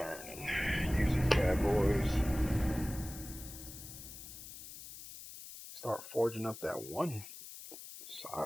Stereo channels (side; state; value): left; noise; hiss, 13 dB below the sound